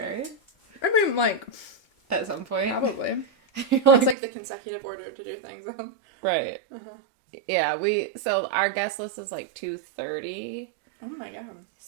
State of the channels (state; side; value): drops out; left; at 4.2 s